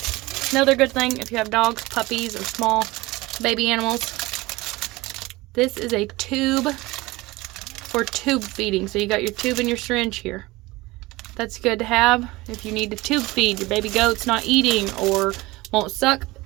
another good thing if you have dogs, puppies, or small baby animals. This is a tube for tube feeding. So you got your tube and your syringe here. That's good to have if you need to tube feed your baby goat's not eating or won't suck.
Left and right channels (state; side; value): quieter; left; 20.8 dB